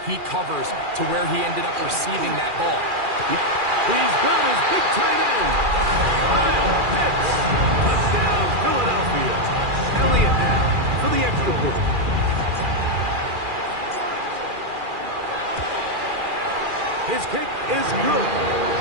he covers to where he ended up receiving that ball. He's got his big tight end. Kyle Pitts. Touchdown, Philadelphia. Elliott now for the extra point. His kick is good.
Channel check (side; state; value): left; late; 2.4 ms